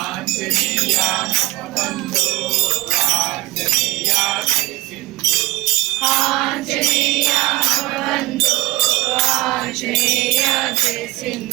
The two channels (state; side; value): quieter; left; 18.7 dB